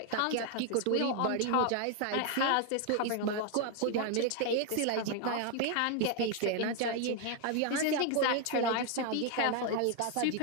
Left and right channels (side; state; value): both; different; correlation 0.01